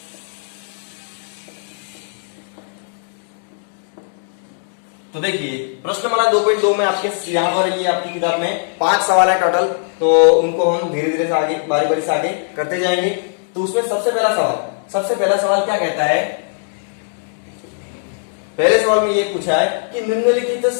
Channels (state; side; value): silent; right; digital silence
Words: तो देखिए प्रश्नमाला 2.2 में आपके यहाँ पर ये आपकी किताब में 5 सवाल है टोटल। तो उनको हम धीरे धीरे से आगे बारी बारी से आगे करते जाएंगे। तो उसमें सबसे पहला सवाल क्या कहता है? पहले सवाल में ये पूछा है कि निम्नलिखित